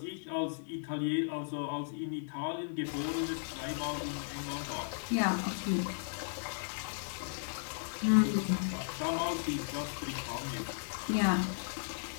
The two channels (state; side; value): silent; right; digital silence